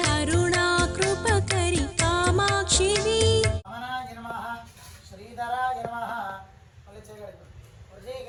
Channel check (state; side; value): identical; both; correlation 1.00